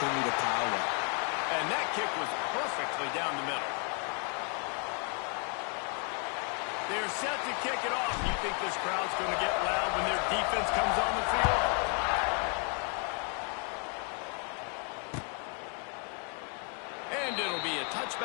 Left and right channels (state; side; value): quieter; right; 39.4 dB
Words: to pile up. And that kick was perfectly down the middle. They're set to kick it off. You think this crowd's going to get loud when their defense comes on the field? And And it'll be a